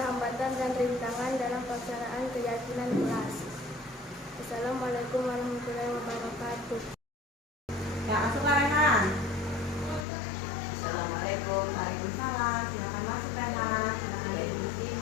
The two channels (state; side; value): drops out; right; at 10.1 s